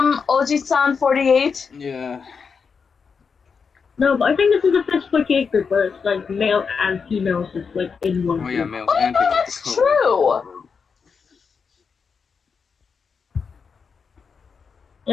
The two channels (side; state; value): right; quieter; 5.7 dB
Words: Oji-san 48? Yeah. No, but I think this is the first 48 group where it's like male and female just like in one group. Oh yeah, males and females. That's true!